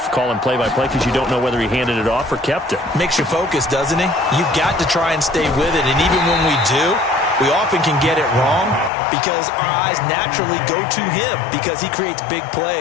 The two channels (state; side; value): drops out; right; at 8.9 s